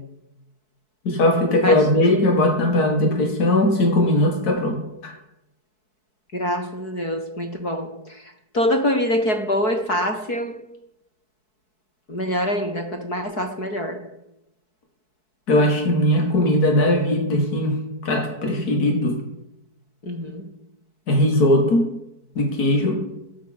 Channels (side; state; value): right; late; 4.6 ms